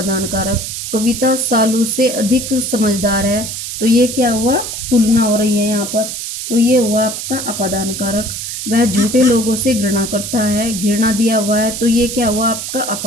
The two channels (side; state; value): right; noise; hiss, 6 dB below the sound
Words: कारक। कविता सालू से अधिक समझदार है, तो ये क्या हुआ? तुलना हो रही है यहाँ पर, तो ये हुआ आपका अपादान कारक। वह झूठे लोगों से घृणा करता है, घृणा दिया हुआ है तो ये क्या हुआ? आपका